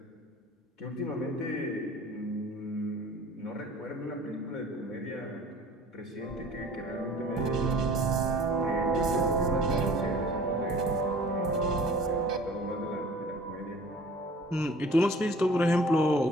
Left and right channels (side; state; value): both; normal; correlation 0.48